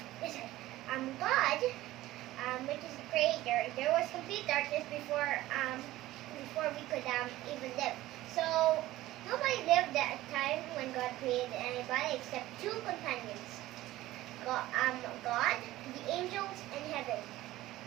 God, which is the creator, there was complete darkness before we could even live. So nobody lived at a time when God created anybody except two companions: God, the angels, and heaven.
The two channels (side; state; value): left; quieter; 16.3 dB